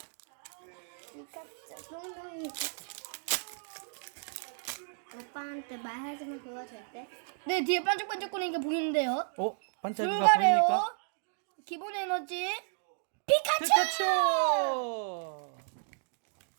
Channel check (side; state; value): left; silent; digital silence